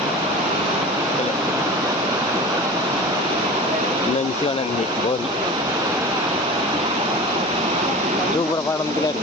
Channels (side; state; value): both; normal; correlation 0.35